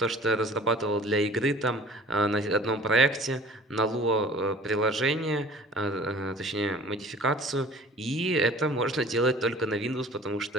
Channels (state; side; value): normal; both; correlation 0.47